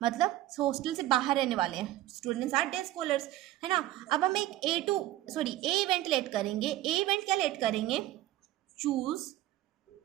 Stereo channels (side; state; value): left; quieter; 14.9 dB